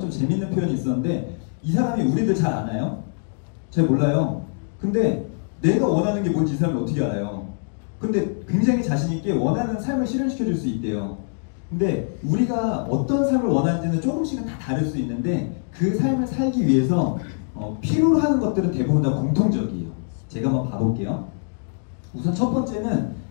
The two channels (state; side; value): silent; right; digital silence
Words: 재밌는 표현이 있었는데 이 사람이 우리들 잘 아나요? 잘 몰라요. 근데 내가 원하는 게 뭔지 이 사람이 어떻게 알아요? 근데 굉장히 자신 있게 원하는 삶을 실현시켜 줄 수 있대요. 근데 우리가 어떤 삶을 원하는지는 조금씩은 다 다를 수 있는데 그 삶을 살기 위해서 필요로 하는 것들은 대부분 다 공통적이에요. 제가 한번 봐볼게요. 우선 첫 번째는